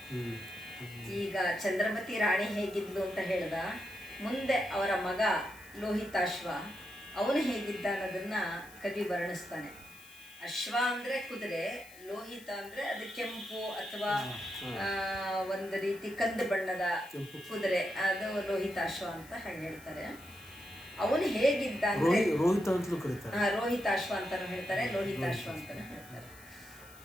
ಈಗ ಚಂದ್ರಮತಿ ರಾಣಿ ಹೇಗಿದ್ಲು ಅಂತ ಹೇಳ್ದ, ಮುಂದೆ ಅವರ ಮಗ ಲೋಹಿತಾಶ್ವ ಅವನು ಹೇಗಿದ್ದ ಅನ್ನೋದನ್ನ ಕವಿ ವರ್ಣಿಸ್ತಾನೆ. ಅಶ್ವ ಅಂದರೆ ಕುದುರೆ, ಲೋಹಿತ ಅಂದರೆ ಅದು ಕೆಂಪು ಅಥವಾ ಒಂದು ರೀತಿ ಕಂದು ಬಣ್ಣದ ಕುದುರೆ, ಅದು ಲೋಹಿತಾಶ್ವ ಅಂತ ಹೇಳ್ತಾರೆ. ಅವನು ಹೇಗಿದ್ದ ಅಂದರೆ ರೋಹಿತಾಶ್ವ ಅಂತಾನು ಹೇಳ್ತಾರೆ, ಲೋಹಿತಾಶ್ವ ಅಂತಾನು ಹೇಳ್ತಾರೆ.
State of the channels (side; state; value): left; noise; hiss, 21 dB below the sound